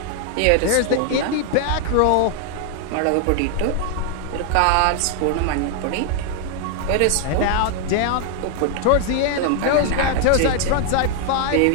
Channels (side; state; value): both; different; correlation 0.00